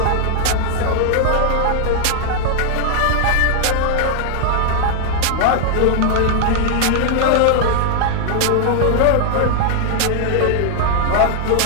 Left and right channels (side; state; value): both; different; correlation -0.01